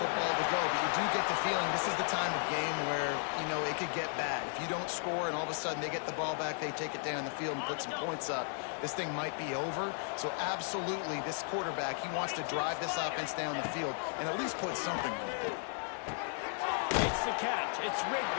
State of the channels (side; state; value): right; silent; 54 dB below the other